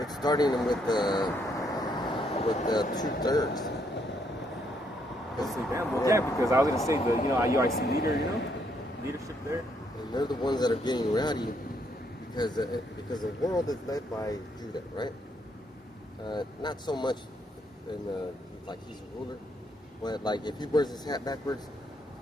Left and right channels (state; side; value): normal; both; correlation 0.73